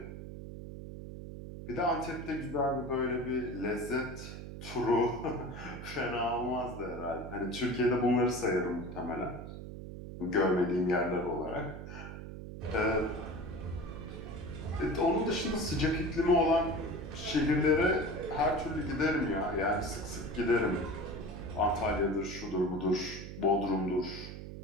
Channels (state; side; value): noise; right; hum, 10 dB below the sound